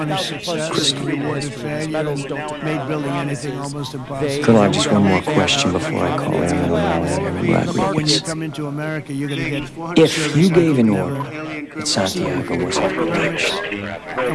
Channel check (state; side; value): identical; both; correlation 1.00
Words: I have just one more question before I call Airman O'Malley and Airman Rodriguez. If you gave an order that Santiago was approached,